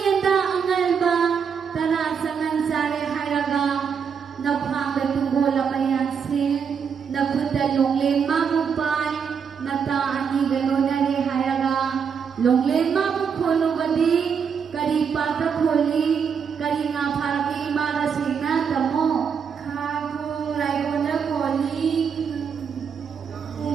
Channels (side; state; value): left; quieter; 6.7 dB